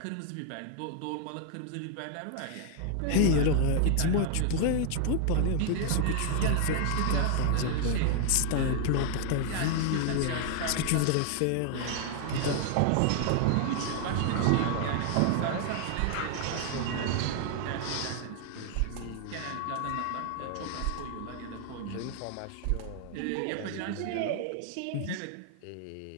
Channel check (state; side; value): different; both; correlation 0.00